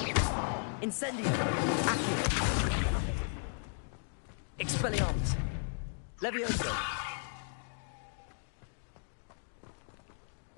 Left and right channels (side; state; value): right; silent; digital silence